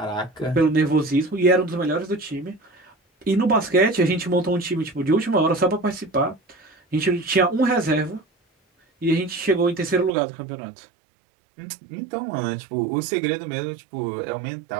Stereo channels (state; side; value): drops out; left; at 10.1 s